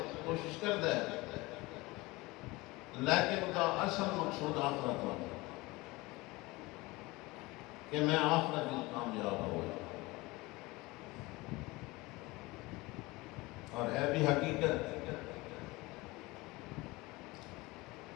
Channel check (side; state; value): right; quieter; 22.2 dB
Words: کوشش کرتا ہے لیکن اس کا اصل مقصود آخرت ہوتا ہے کہ میں آخرت میں کامیاب ہو گیا اور ہے بھی حقیقت